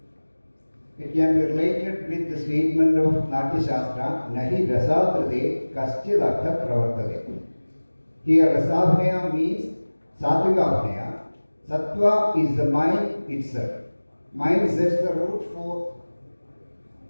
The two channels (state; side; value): inverted; both; correlation -1.00